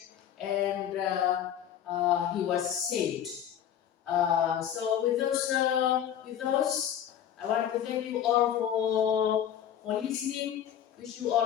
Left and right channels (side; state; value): right; quieter; 9.9 dB